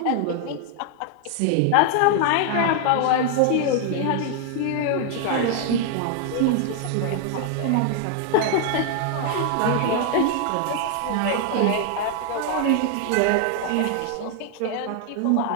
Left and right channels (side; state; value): both; different; correlation 0.00